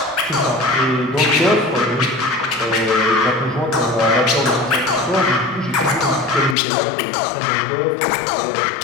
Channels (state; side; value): drops out; right; at 6.6 s